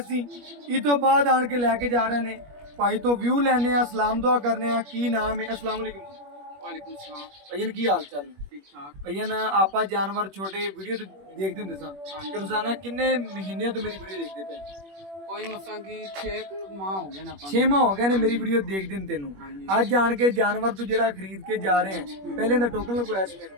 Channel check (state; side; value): late; left; 21 ms